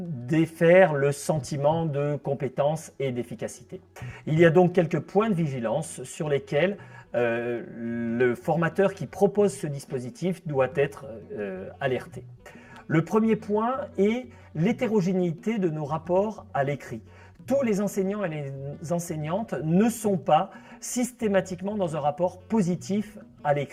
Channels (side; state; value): both; identical; correlation 1.00